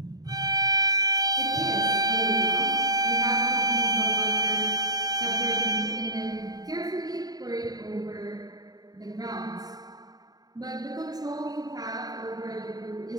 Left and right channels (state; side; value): late; left; 0.18 ms